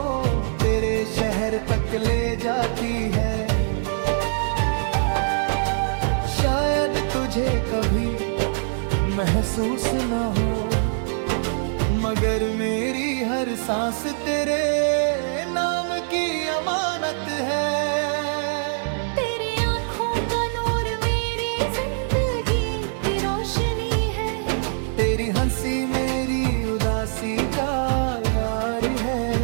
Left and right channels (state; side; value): silent; left; 63 dB below the other